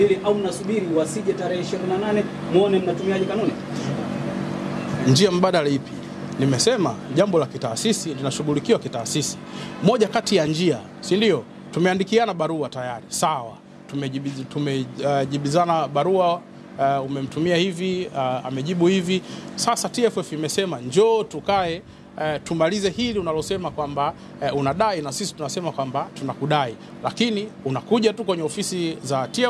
au mnasubiri wasije tarehe 28 muone mnatumiaje kanuni? Njia mbadala ipi? Nimesema jambo la kitaasisi linashughulikiwa kitaasisi. Moja kati ya njia, si ndio? Tumeandikiana barua tayari, sawa. Tumejibizana barua, umemtumia hivi, amejibu hivi. Sasa TFF imesema njoo tukae tumalize hili unalosema kwamba unadai, na sisi tunasema kwamba tunakudai, lakini unakuja tu kwenye ofisi za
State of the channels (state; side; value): identical; both; correlation 1.00